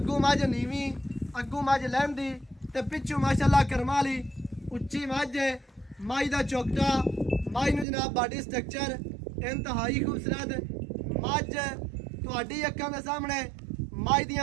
मझ नीवी अग्गू मझ लहंदी ते पिछू माशाल्लाह करमा वाली उच्ची मझ है। माई का चौकटा माई नू जनाब बॉडी स्ट्रक्चर इंतहाई खूबसूरत मझ ਤੁਹਾਡੀ ਅੱਖਾਂ ਦੇ ਸਾਹਮਣੇ ਮੱਝ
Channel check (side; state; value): left; drops out; at 7.9 s